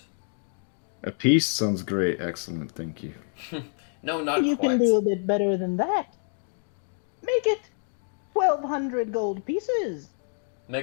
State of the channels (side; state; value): right; silent; 57 dB below the other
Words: A piece sounds great. Excellent, thank you. No, not You quite. can do a bit better than that. Make it 1,200 gold pieces.